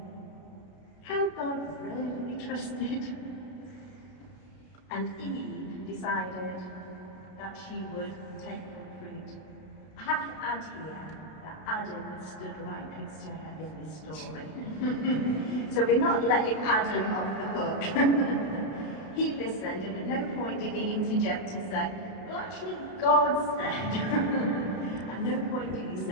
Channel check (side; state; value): right; late; 32 ms